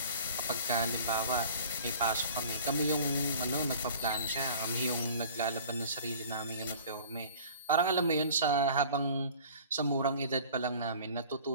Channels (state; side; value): inverted; both; correlation -0.45